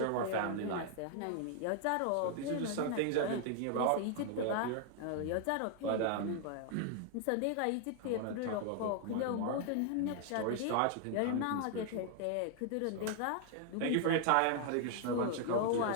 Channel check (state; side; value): different; both; correlation 0.00